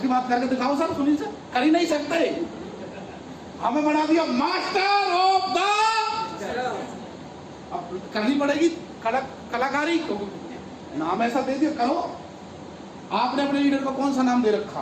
बात करके दिखाओ सर, सुनील सर, कर ही नहीं सकते। हमें बना दिया मास्टर ऑफ द, अब करनी पड़ेगी कलाकारी को, नाम ऐसा दे दिया करो। आपने अपने लीडर को कौन सा नाम दे रखा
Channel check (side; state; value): both; identical; correlation 1.00